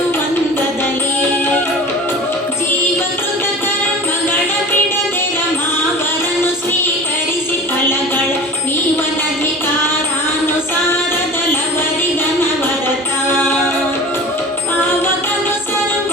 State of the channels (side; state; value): both; normal; correlation 0.37